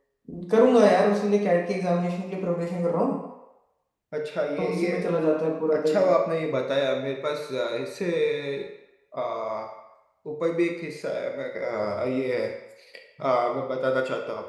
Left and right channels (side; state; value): both; identical; correlation 1.00